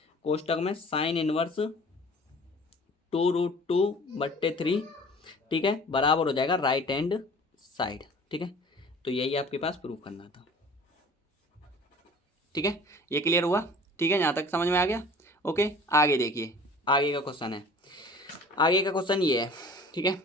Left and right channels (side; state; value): both; normal; correlation 0.46